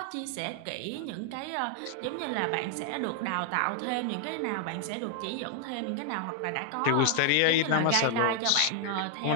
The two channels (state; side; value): different; both; correlation 0.00